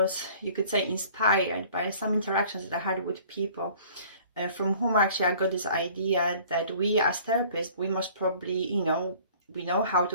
you could say, inspired by some interactions that I had with people from whom actually I got this idea that we as therapists, we must probably, we know how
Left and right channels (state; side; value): inverted; both; correlation -0.51